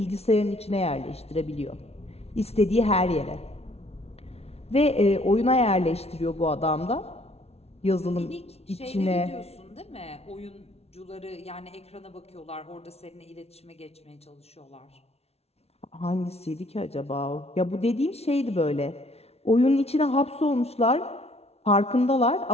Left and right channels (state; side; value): late; right; 0.30 ms